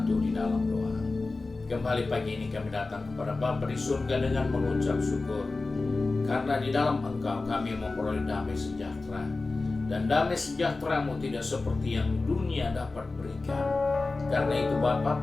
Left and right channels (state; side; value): quieter; right; 3.5 dB